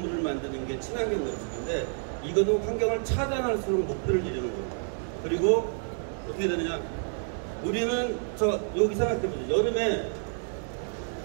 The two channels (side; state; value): left; silent; 57 dB below the other